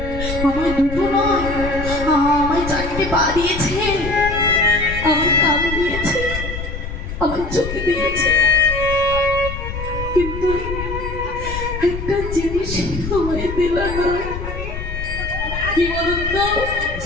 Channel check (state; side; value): noise; left; rumble, 7 dB below the sound